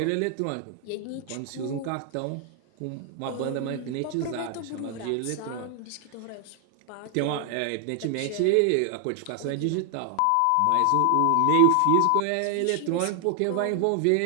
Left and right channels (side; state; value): both; different; correlation 0.00